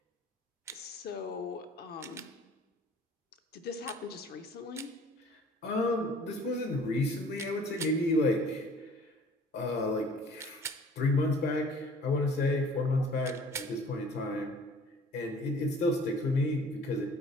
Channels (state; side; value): normal; both; correlation 0.51